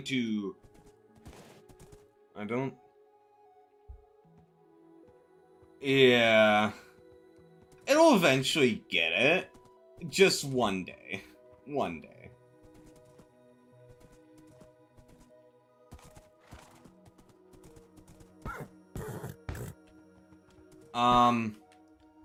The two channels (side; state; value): both; identical; correlation 1.00